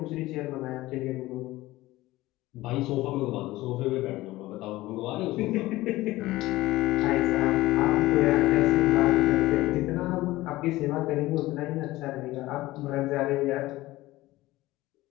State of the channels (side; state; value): right; quieter; 17.9 dB